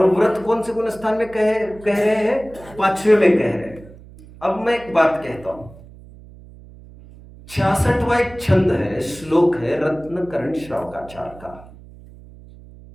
व्रत कौन से गुणस्थान में कह रहे हैं? 5वें में कह रहे हैं। अब मैं एक बात कहता हूं, 66वां एक छंद है, श्लोक है रत्नकरण श्रावकाचार का,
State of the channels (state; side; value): noise; right; hum, 20 dB below the sound